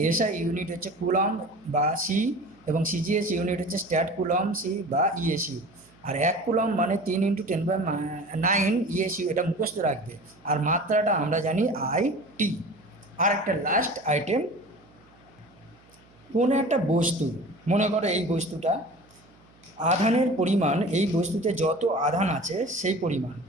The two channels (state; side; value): noise; right; hum, 29 dB below the sound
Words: এসআই ইউনিট হচ্ছে কুলম বা সি, এবং সিজিএস ইউনিট হচ্ছে স্ট্যাট কুলম সি বা ইএসইউ। আর 1 কুলম মানে 3 × 10⁹ ইএসইউ, এটা মুখস্থ রাখবে। আর মাত্রাটা আমরা জানি IT। আর একটা লাস্ট আইটেম, কোনো একটা বস্তু, মনে করো এই বস্তুটা, আধানের পরিমাণ এই বস্তুতে যত আধান আছে সেই পরিমাণ